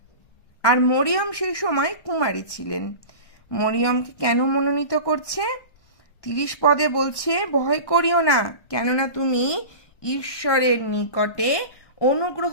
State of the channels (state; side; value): late; right; 1.2 ms